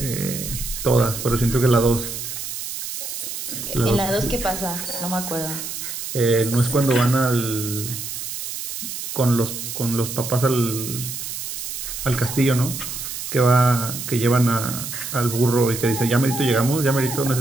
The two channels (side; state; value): right; noise; hiss, 6 dB below the sound